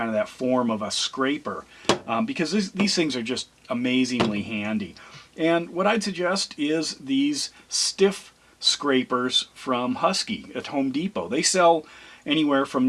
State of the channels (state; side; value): identical; both; correlation 1.00